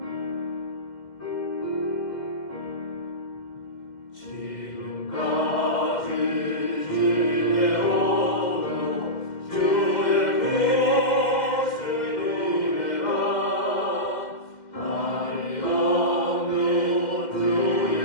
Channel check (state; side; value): late; right; 2.1 ms